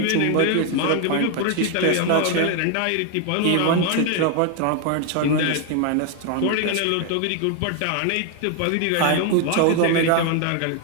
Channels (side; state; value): both; different; correlation 0.00